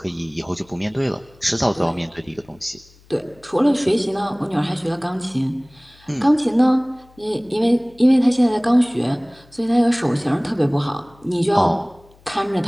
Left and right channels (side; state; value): left; noise; hum, 28 dB below the sound